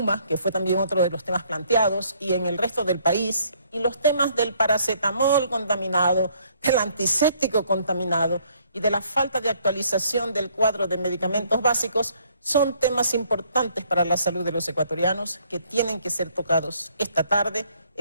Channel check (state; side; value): inverted; both; correlation -0.65